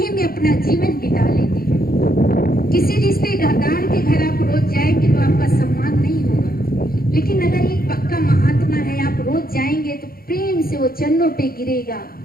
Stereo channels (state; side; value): late; right; 0.43 ms